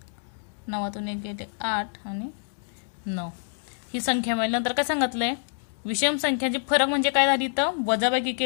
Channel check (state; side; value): silent; right; digital silence